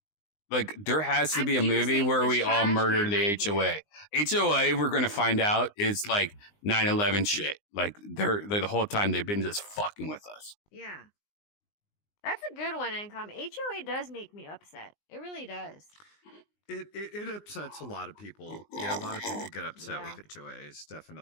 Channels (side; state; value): right; late; 19 ms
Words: there has to be a movie using where the we all trash murder can the right here. HOA. HOA, we're going to find out, is like 9/11 shit. Like they're the whole time they've been just fucking with us. Yeah. That's a good one, Income. HOA does make me upset. It really does. It upsets a lot of people. Yeah, a lot of people get upset with HOAs,